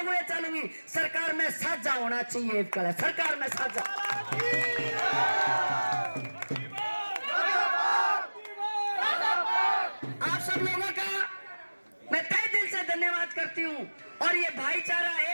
घोड़े चलूंगी। सरकार में साझा होना चाहिए, सरकार में साझा। आप सब लोगों का मैं तहे दिल से धन्यवाद करती हूँ और ये भाईचारा,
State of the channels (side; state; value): both; inverted; correlation -1.00